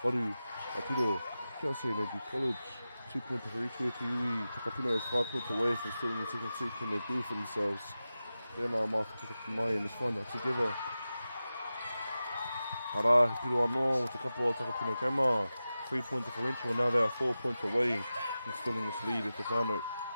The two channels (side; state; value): both; inverted; correlation -0.94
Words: waru, a piro, kia se Energy College. 2 points for each way to Iwi. Takapuna is 5 points away from still in the second seat. Can they do for themselves? Tēnā mā whakataki mai, and let's find out together. Ara, he piro anō with a couple of Takapuna Grammar. 3-point differential, and now they are 4 points away from still in this lead at the whānau.